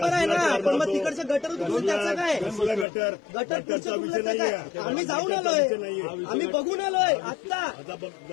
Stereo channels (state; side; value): drops out; right; at 2.9 s